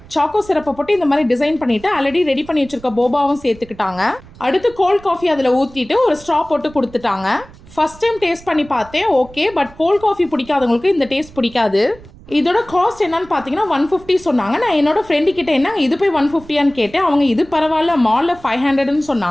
சாக்கோ சிரப்பை போட்டு இந்த மாதிரி டிசைன் பண்ணிட்டு ஆல்ரெடி ரெடி பண்ணி வச்சிருக்க போபாவும் சேர்த்துக்கிட்டாங்க. அடுத்து கோல்ட் காஃபி அதில் ஊற்றிட்டு ஒரு ஸ்ட்ரா போட்டு கொடுத்துட்டாங்க. ஃபர்ஸ்ட் டைம் டேஸ்ட் பண்ணி பார்த்தேன், ஓகே, பட் கோல்ட் காஃபி பிடிக்காதவங்களுக்கு இந்த டேஸ்ட் பிடிக்காது. இதோட காஸ்ட் என்னன்னு பார்த்தீங்கன்னா 150 சொன்னாங்க. நான் என்னோட ஃப்ரெண்டு கிட்ட என்ன இது போய் 150 கேட்டேன். அவங்க இது பரவாயில்ல, மால்ல 500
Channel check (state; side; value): noise; right; rumble, 22 dB below the sound